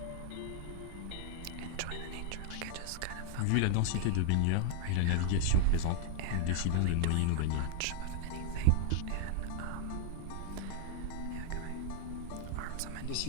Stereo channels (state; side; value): different; both; correlation 0.00